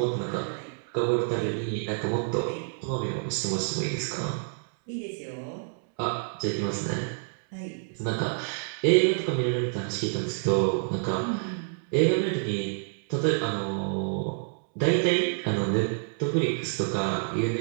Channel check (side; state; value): left; silent; 59 dB below the other